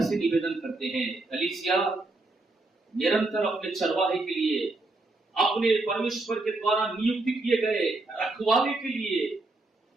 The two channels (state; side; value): quieter; left; 3.0 dB